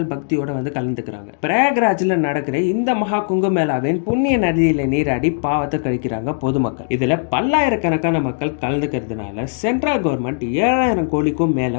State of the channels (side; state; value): right; silent; digital silence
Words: பக்தியோட வந்து கலந்துக்கிறாங்க. பிரயாக்ராஜ்ல நடக்கிற இந்த மகா கும்பமேளாவின் புண்ணிய நதியில நீராடி பாவத்தை கழிக்கிறாங்க பொதுமக்கள். இதுல பல்லாயிரக்கணக்கான மக்கள் கலந்துக்கிறதுனால சென்ட்ரல் கவர்மெண்ட் 7000 கோடிக்கும்